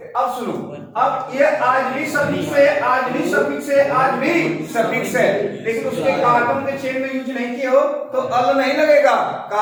अब सुनो, अब ये आज भी सफिक्स है, आज भी सफिक्स है, आज भी सफिक्स है, लेकिन उसके कार्बन के चेन में यूज नहीं किए हो तो अल नहीं लगेगा,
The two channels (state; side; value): identical; both; correlation 1.00